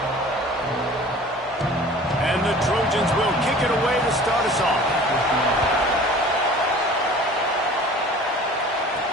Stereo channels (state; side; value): normal; both; correlation 0.45